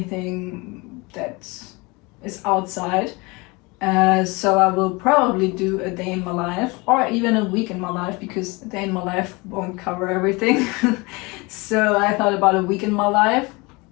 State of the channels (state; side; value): quieter; right; 25.9 dB